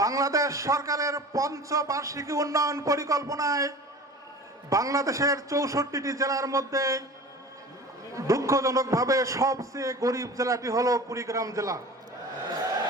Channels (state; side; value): normal; both; correlation 0.38